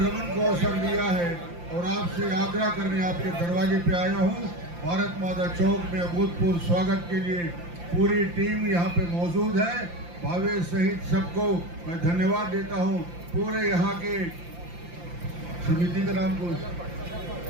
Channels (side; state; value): left; late; 5.8 ms